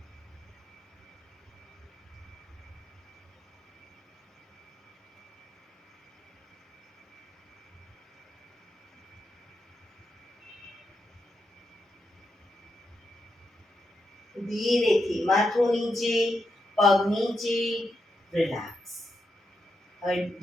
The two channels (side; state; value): both; normal; correlation 0.84